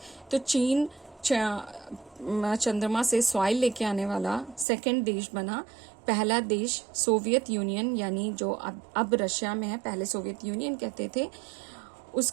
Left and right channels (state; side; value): drops out; left; at 4.7 s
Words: तो चीन चंद्रमा से soil लेके आने वाला second देश बना. पहला देश सोवियत यूनियन यानी जो अब रशिया में है, पहले सोवियत यूनियन कहते थे,